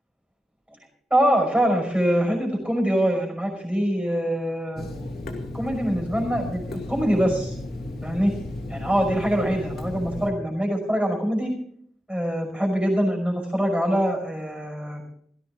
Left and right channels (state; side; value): normal; both; correlation 0.90